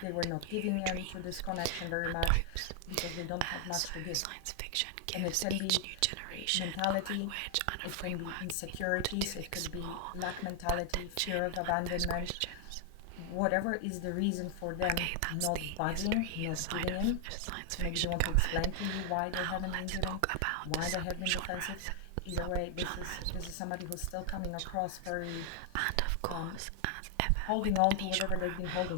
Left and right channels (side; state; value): both; different; correlation 0.00